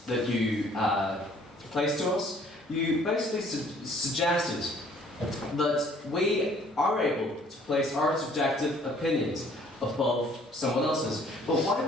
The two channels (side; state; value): both; normal; correlation 0.58